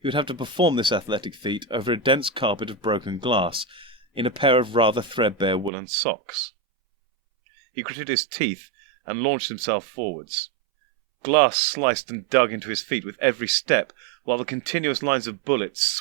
he would have to perform this athletic feat over a dense carpet of broken glass, in a pair of rather threadbare woolen socks. He gritted his teeth and launched himself forwards. Glass sliced and dug into his feet with every step, while the continuous lines of bullets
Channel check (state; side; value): drops out; left; at 5.7 s